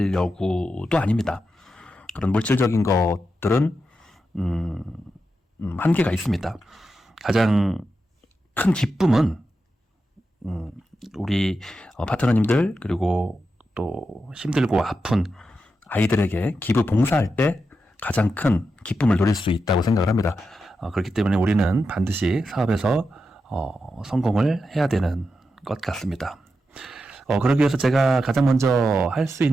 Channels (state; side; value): normal; both; correlation 0.88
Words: 아닙니다. 그런 물질적인 것들은 한계가 있습니다. 가장 큰 기쁨은 우리 파트너님들, 그리고 또 힘들고 아픈 아이들에게 기부 봉사할 때 가장 큰 기쁨을 누릴 수 있다고 생각을 합니다. 그렇기 때문에 우리는 반드시 사업에서 성공을 해야 되는 것 같습니다. 그러기 위해서 제가 가장 먼저 할 수